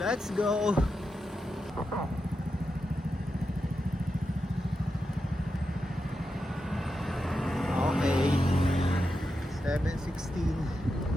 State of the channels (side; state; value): both; normal; correlation 0.88